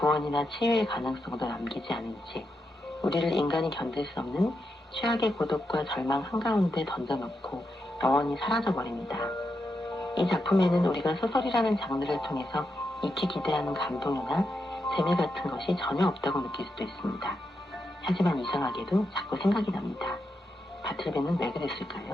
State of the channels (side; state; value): both; normal; correlation 0.85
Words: 치유의 가능성도 남기지 않은 채 우리를 인간이 견딜 수 없는 최악의 고독과 절망 한가운데 던져놓고 영원히 사라져버립니다. 이 작품에는 우리가 소설이라는 장르를 통해서 익히 기대하는 감동이나 재미 같은 것이 전혀 없다고 느낄 수도 있습니다. 하지만 이상하게도 자꾸 생각이 납니다. 바틀베는 왜